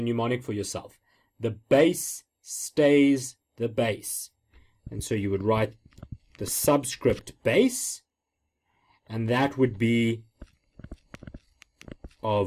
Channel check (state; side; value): identical; both; correlation 1.00